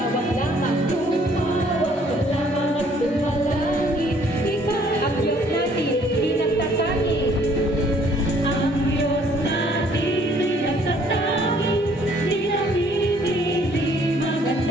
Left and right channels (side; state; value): both; normal; correlation 0.61